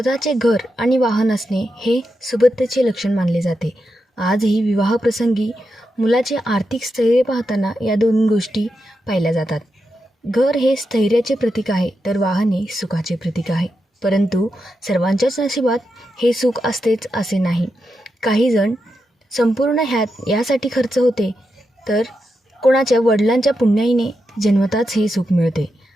घर आणि वाहन असणे हे सुबत्तेचे लक्षण मानले जाते. आजही विवाहप्रसंगी मुलाचे आर्थिक स्थैर्य पाहताना या दोन गोष्टी पाहिल्या जातात. घर हे स्थैर्याचे प्रतीक आहे, तर वाहन हे सुखाचे प्रतीक आहे. परंतु सर्वांच्याच नशिबात हे सुख असतेच असे नाही. काही जण संपूर्ण यासाठी खर्च होते, तर कोणाच्या वडिलांच्या पुण्याईने जन्मताच हे सुख मिळते.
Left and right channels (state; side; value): normal; both; correlation 0.87